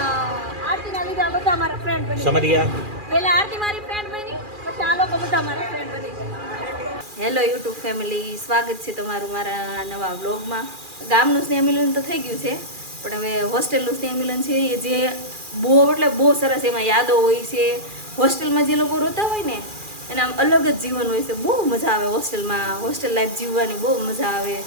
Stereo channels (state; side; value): late; left; 2.4 ms